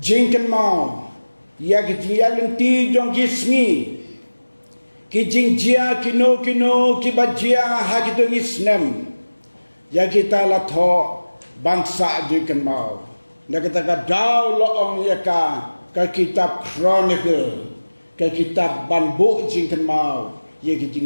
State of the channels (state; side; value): inverted; both; correlation -1.00